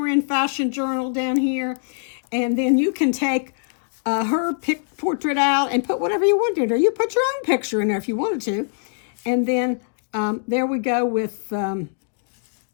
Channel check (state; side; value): silent; right; digital silence